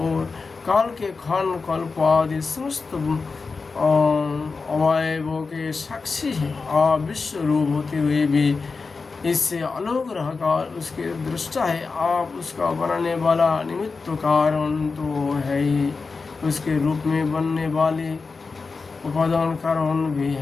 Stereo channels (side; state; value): right; quieter; 4.4 dB